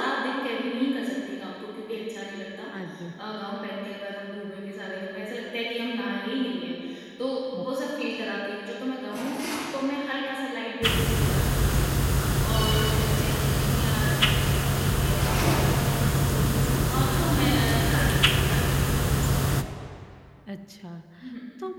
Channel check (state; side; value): identical; both; correlation 1.00